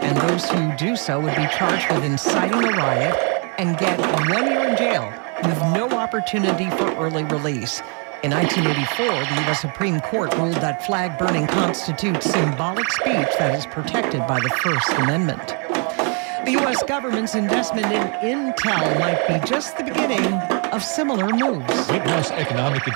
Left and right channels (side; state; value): left; quieter; 37.8 dB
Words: those who do so would be charged with inciting a riot and get 1 year in jail with no opportunity for early release. In 1984, the U.S. Supreme Court ruled that flag burning constitutes symbolic speech that is protected by the First Amendment. The U.S. government's investment in Intel might be just the beginning of similar moves. White House economic